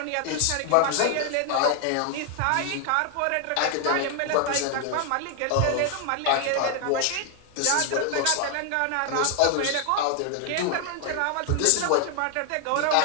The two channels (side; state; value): both; different; correlation 0.00